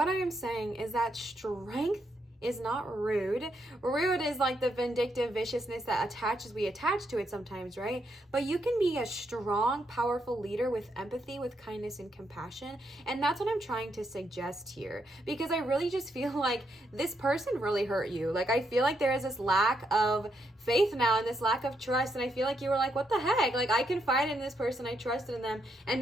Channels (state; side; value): normal; both; correlation 0.78